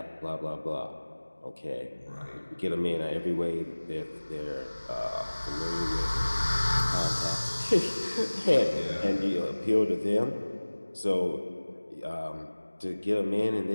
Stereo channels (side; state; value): both; inverted; correlation -1.00